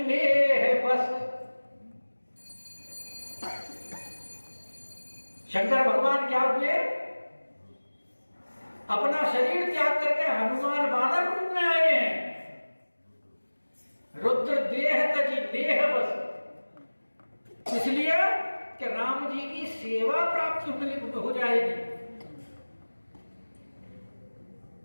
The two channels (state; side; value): inverted; both; correlation -1.00